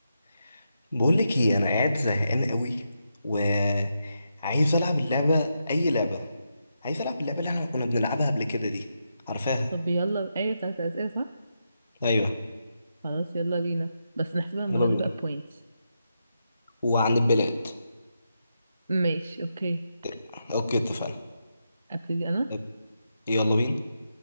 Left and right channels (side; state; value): both; inverted; correlation -0.85